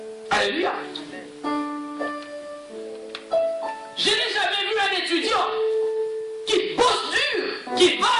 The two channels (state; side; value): identical; both; correlation 1.00